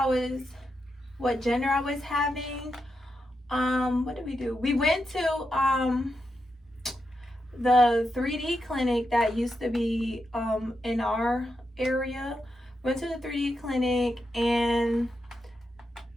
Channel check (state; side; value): normal; both; correlation 0.86